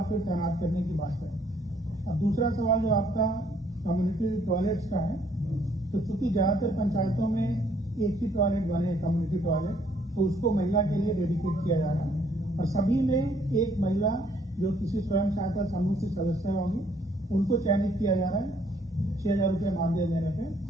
फिर तैनात करने की बात है। अब दूसरा सवाल जो आपका कम्युनिटी टॉयलेट्स का है, तो चूंकि ज्यादातर पंचायतों में एक ही टॉयलेट बने हैं कम्युनिटी टॉयलेट, तो उसको महिला के लिए डेडिकेट किया जा रहा है और सभी में एक महिला जो किसी स्वयं सहायता समूह की सदस्य होंगी उनको चयनित किया जा रहा है 6,000 रुपये मानदेय देने पे।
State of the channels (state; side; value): normal; both; correlation 0.66